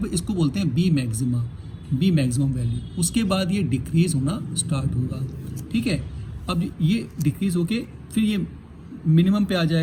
इसको बोलते हैं B मैक्सिमम वैल्यू, उसके बाद ये डिक्रीज होना स्टार्ट होगा, ठीक है। अब ये डिक्रीज होके फिर ये मिनिमम पे आ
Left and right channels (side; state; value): both; identical; correlation 1.00